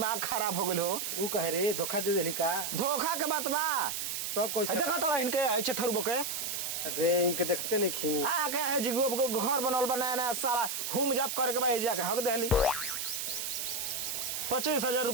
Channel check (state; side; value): noise; right; hiss, 3 dB below the sound